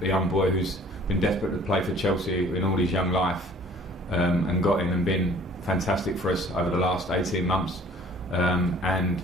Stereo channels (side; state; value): both; normal; correlation 0.53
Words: young boy who's been desperate to play for Chelsea in all his young life, and got in and been fantastic for us over the last 18 months,